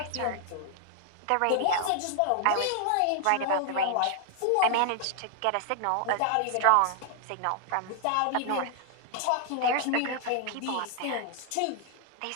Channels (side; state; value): both; different; correlation 0.00